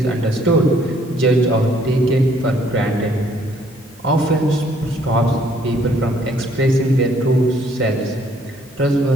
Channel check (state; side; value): normal; both; correlation 0.64